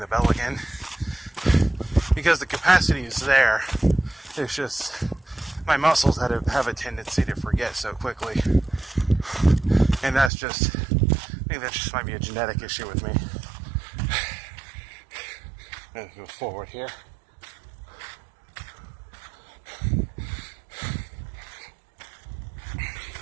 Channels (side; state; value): left; drops out; at 10.3 s